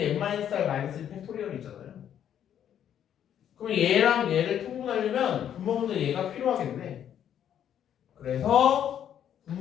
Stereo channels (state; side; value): quieter; right; 9.7 dB